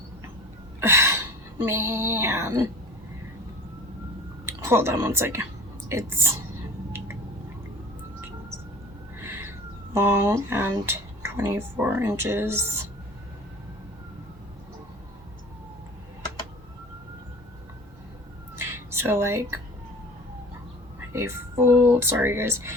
Man. Hold on one second. It's long and 24 inches. So like a full, sorry guys,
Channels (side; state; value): both; normal; correlation 0.41